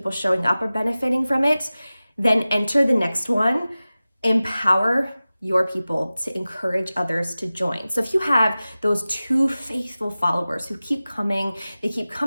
showing up are benefiting from it, then enter the next one. Empower your people to encourage others to join. So if you have those 2 faithful followers who keep coming, they keep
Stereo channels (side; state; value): both; inverted; correlation -0.97